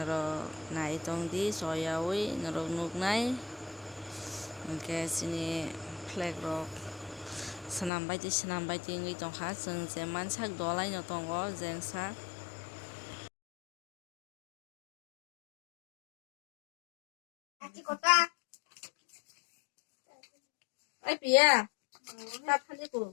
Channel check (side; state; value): right; drops out; at 7.9 s